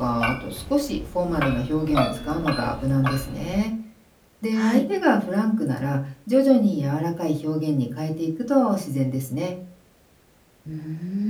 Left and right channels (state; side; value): identical; both; correlation 1.00